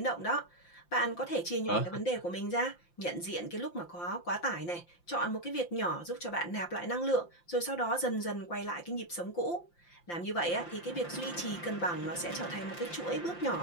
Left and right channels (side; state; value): right; late; 5.8 ms